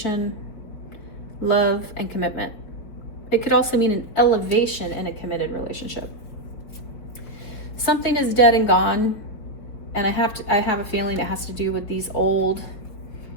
love, and commitment. It could also mean an elevation in a committed relationship. Something is dead and gone, and I have a feeling it has to do with these old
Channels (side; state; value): right; late; 5.1 ms